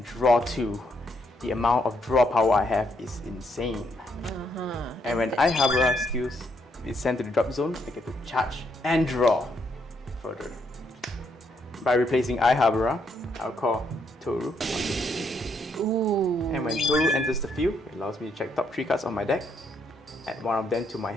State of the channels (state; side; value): normal; both; correlation 0.75